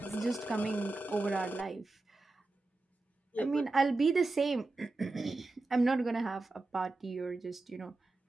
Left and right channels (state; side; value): quieter; left; 3.2 dB